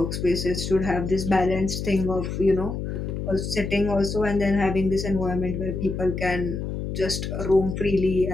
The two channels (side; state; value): left; noise; hum, 4 dB below the sound